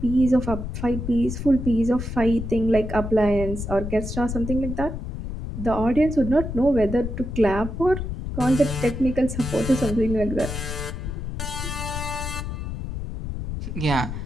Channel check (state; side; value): noise; left; rumble, 6 dB below the sound